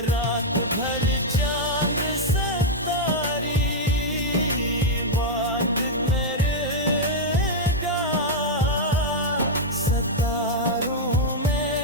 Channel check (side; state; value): both; normal; correlation -0.02